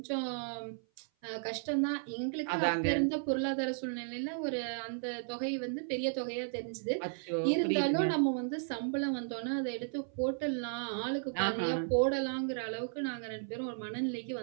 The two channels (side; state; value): left; silent; 55 dB below the other